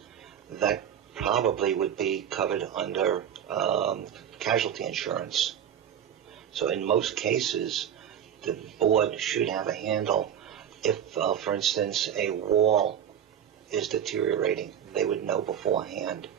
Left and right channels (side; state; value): left; quieter; 9.3 dB